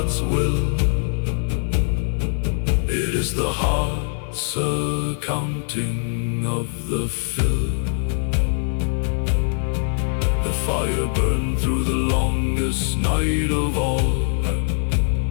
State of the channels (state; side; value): silent; right; 57 dB below the other